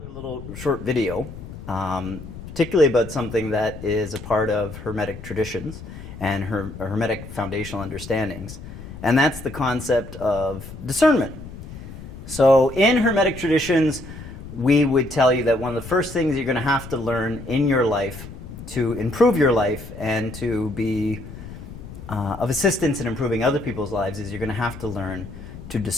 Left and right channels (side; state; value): left; noise; rumble, 13 dB below the sound